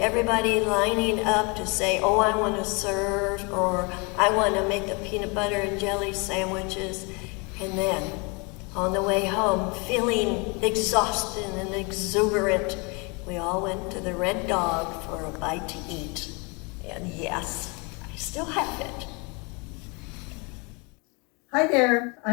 lining up to say, oh, I want to serve, or I want to make the peanut butter and jelly sandwiches. And then on the way home, feeling exhausted and exuberant, we all went to the Red Dog for a bite to eat. And yes, I still have it. Hi there,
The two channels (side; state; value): right; quieter; 30.5 dB